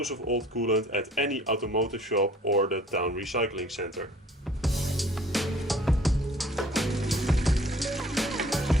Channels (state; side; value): normal; both; correlation 0.54